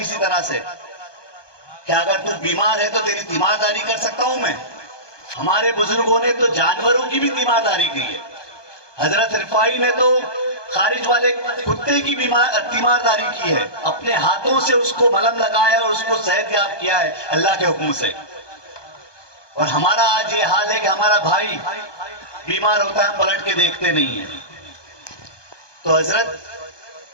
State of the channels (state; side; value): late; right; 1.2 ms